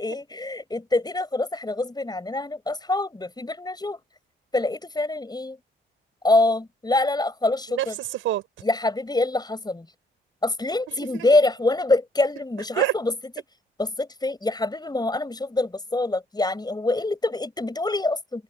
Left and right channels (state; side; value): normal; both; correlation 0.66